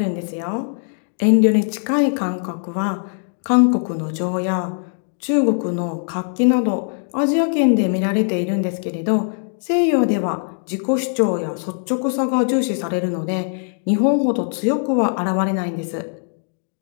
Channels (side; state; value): right; silent; digital silence